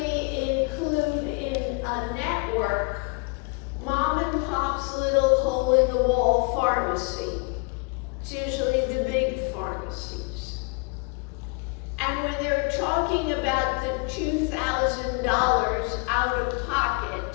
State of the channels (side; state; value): right; quieter; 31.8 dB